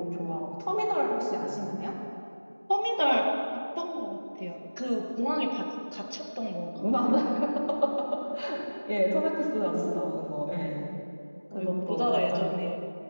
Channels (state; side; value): inverted; both; correlation -1.00